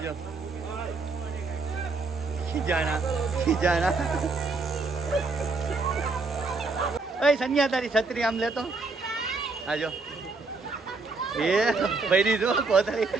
ખીજાણા ઓય સન્યા તારી છત્રી આમ લેતો આજો એ ભરી દો કોતરી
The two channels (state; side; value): quieter; left; 3.8 dB